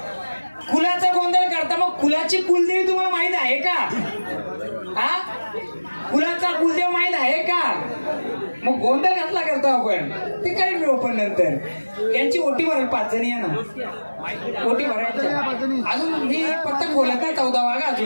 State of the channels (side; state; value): both; inverted; correlation -1.00